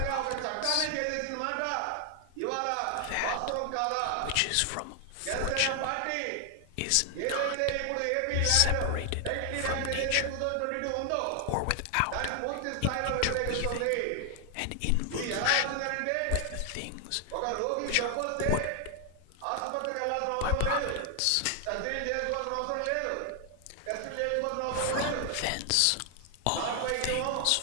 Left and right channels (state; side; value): different; both; correlation 0.00